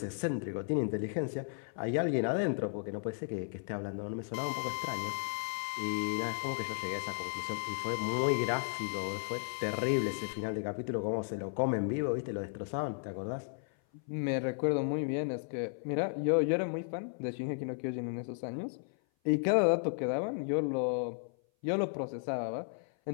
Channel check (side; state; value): right; silent; 55 dB below the other